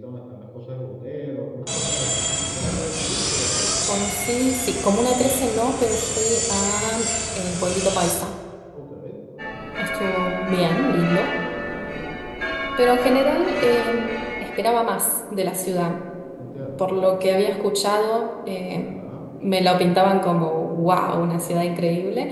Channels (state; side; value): identical; both; correlation 1.00